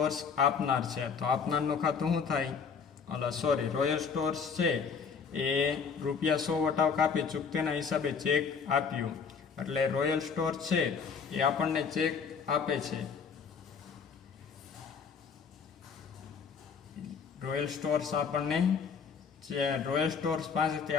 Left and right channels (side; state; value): right; quieter; 6.0 dB